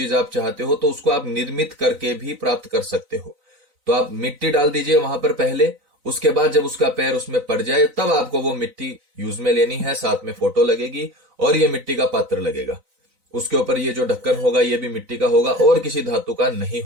आप चाहते हो तो उसको आप निर्मित करके भी प्राप्त कर सकते हो। तो आप मिट्टी डाल दीजिए वहां पर पहले, उसके बाद जब उसका पैर उसमें पड़ जाए तब आपको वो मिट्टी यूज में लेनी है। साथ में फोटो लगेगी और ये मिट्टी का पात्र लगेगा। उसके ऊपर ये जो ढक्कन होगा ये भी मिट्टी का होगा और किसी धातु का नहीं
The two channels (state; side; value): late; left; 3.9 ms